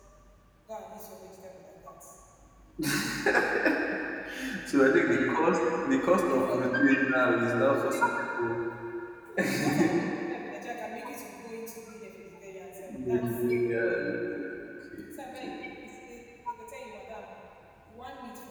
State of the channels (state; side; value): identical; both; correlation 1.00